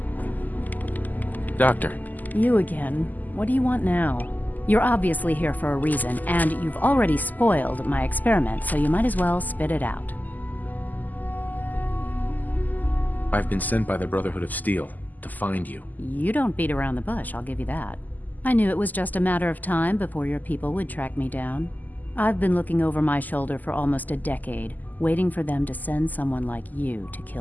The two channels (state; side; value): late; right; 0.083 ms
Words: Doctor. You again. What do you want now? You're obviously here for a reason, and you've already spoiled my experiment, so you might as well spit it out. I've been sent by the Brotherhood of Steel to find you. You don't beat around the bush, I'll give you that. I knew it was just a matter of time before your people would track me down. I've been looking over my shoulder for almost a decade, waiting for them to send someone like you to